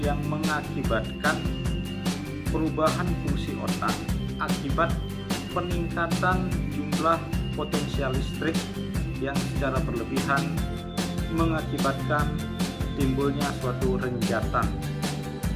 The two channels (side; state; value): both; identical; correlation 1.00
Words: mengakibatkan perubahan fungsi otak akibat peningkatan jumlah potensial listrik yang secara berlebihan mengakibatkan timbulnya suatu renjatan